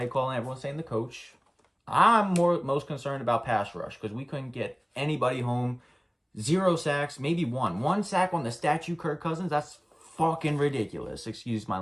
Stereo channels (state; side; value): identical; both; correlation 1.00